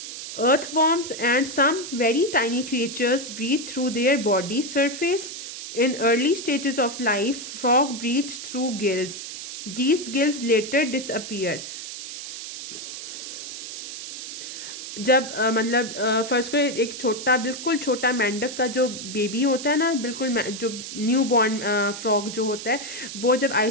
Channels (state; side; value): noise; right; hiss, 9 dB below the sound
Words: Earthworms and some very tiny creatures breathe through their body surface. In early stages of life, frog breathes through gills. These gills later disappear. जब मतलब फर्स्ट को एक छोटा, बिल्कुल छोटा मेंढक का जो बेबी होता है ना, बिल्कुल जो न्यू बॉर्न फ्रॉग जो होता है, वो जब